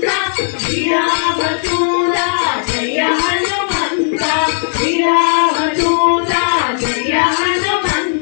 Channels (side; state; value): right; silent; digital silence